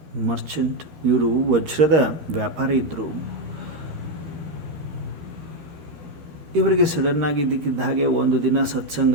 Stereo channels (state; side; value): late; left; 13 ms